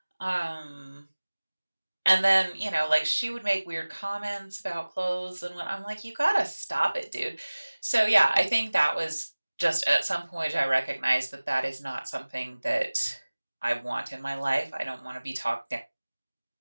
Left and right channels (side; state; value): both; inverted; correlation -1.00